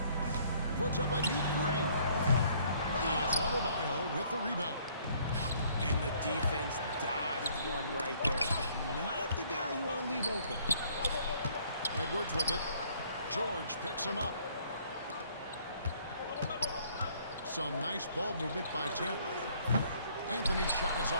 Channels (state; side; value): inverted; both; correlation -0.62